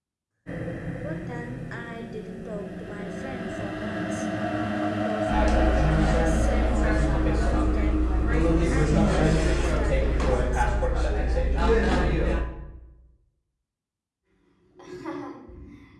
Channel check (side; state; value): both; identical; correlation 1.00